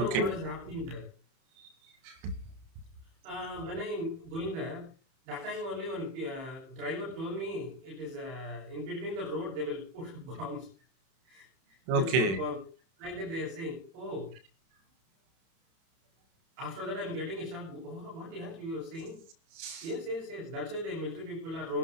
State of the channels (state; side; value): late; left; 30 ms